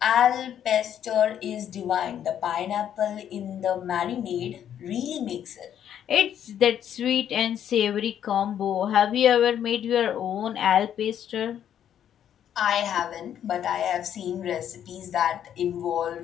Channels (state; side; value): quieter; right; 9.8 dB